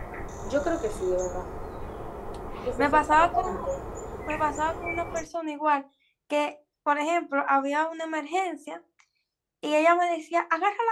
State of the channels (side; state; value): both; identical; correlation 1.00